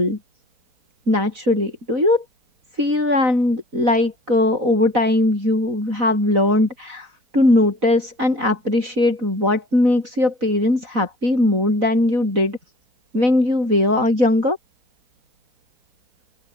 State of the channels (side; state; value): left; late; 4.0 ms